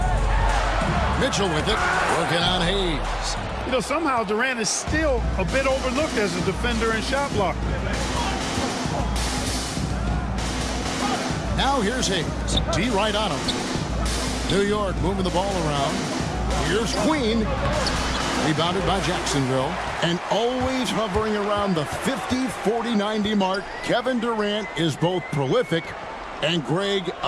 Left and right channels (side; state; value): both; identical; correlation 1.00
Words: Mitchell with it, working on Hayes. You know, somehow Durant is still a bit overlooked as a defender and shot blocker. Now here's Hayes. D right on him. New York moving the ball around. Here's Queen. Rebounded by Jacksonville. And always hovering around the 50, 40, 90 mark, Kevin Durant is both prolific and Greg